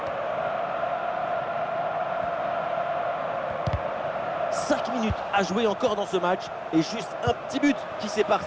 Cinq minutes à jouer encore dans ce match et juste un petit but qui sépare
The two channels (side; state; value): both; identical; correlation 1.00